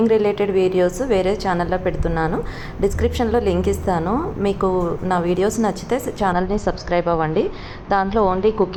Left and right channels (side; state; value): both; identical; correlation 1.00